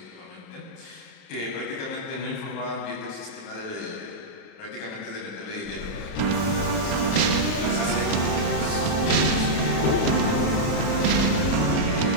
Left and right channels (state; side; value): late; right; 39 ms